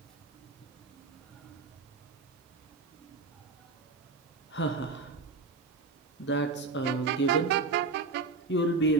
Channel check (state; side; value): quieter; left; 4.0 dB